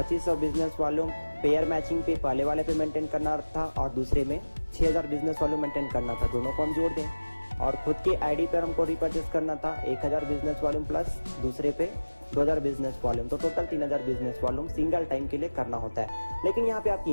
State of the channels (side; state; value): both; inverted; correlation -1.00